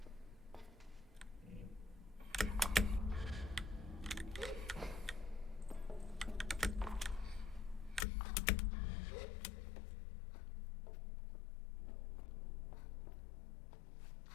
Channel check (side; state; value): right; drops out; at 8.1 s